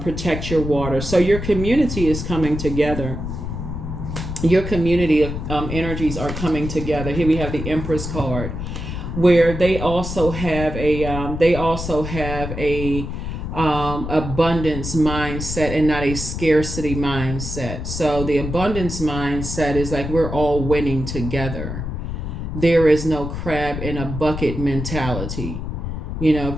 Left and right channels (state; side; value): noise; left; rumble, 6 dB below the sound